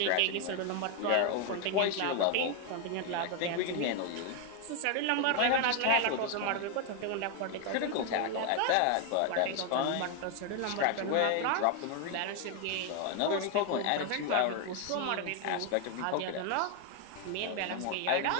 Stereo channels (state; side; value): different; both; correlation 0.01